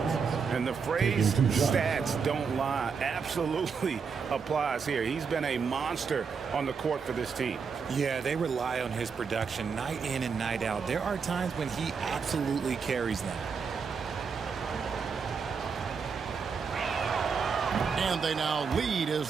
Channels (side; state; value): left; quieter; 5.8 dB